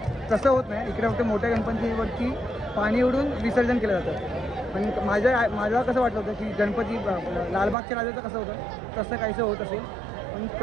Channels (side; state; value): left; drops out; at 7.8 s